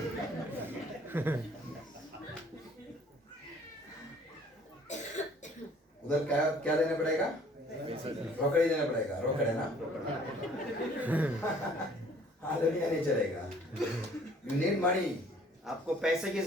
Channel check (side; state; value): both; normal; correlation 0.56